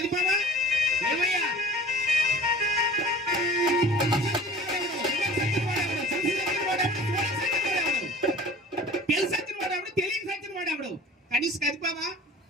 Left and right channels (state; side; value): normal; both; correlation 0.43